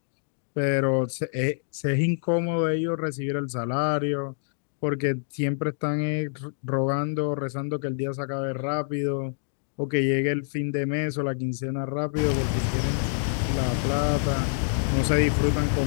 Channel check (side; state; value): right; silent; digital silence